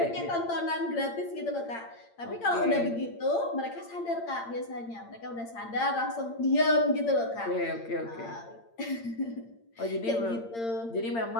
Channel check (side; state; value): right; late; 8.7 ms